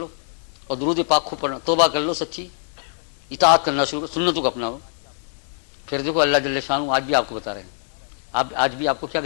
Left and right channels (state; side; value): silent; right; digital silence